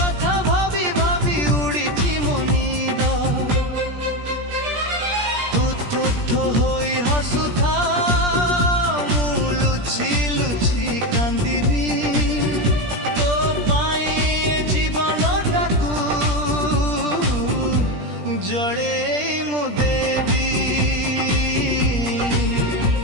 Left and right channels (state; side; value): late; left; 17 ms